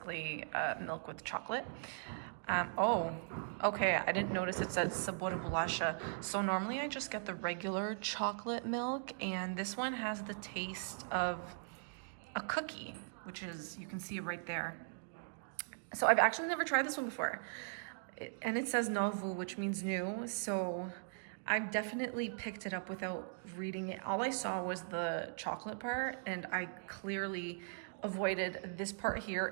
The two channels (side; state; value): left; silent; digital silence